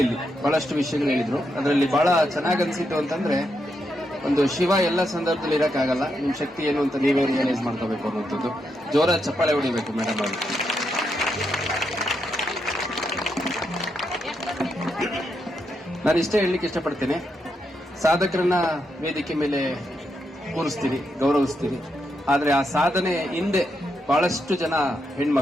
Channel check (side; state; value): both; normal; correlation 0.82